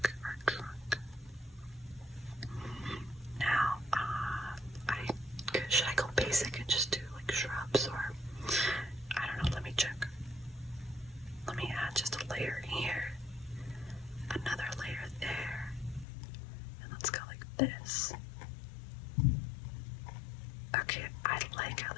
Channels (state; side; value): drops out; right; at 16.1 s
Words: Now, should I go basic and just do like shrubs, or I don't know, let me check. Let me add just a layer here, another layer there, and let's go like this. Okay, I like how